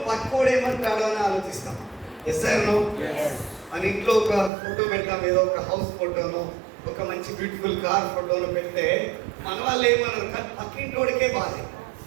పక్కోడు ఏమంటాడో అని ఆలోచిస్తాం. Yes or no? మన ఇంట్లో ఒక ఫోటో పెడతాం, ఏదో ఒక హౌస్ ఫోటోనో ఒక మంచి బ్యూటిఫుల్ కార్ ఫోటోను పెడితే మన వాళ్ళు ఏమన్నారు, పక్కింటోడికే బాధ.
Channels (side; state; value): left; drops out; at 4.5 s